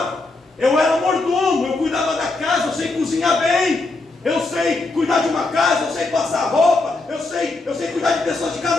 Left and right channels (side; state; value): right; quieter; 3.3 dB